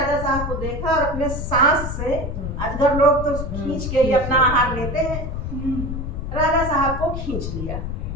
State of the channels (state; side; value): noise; left; rumble, 5 dB below the sound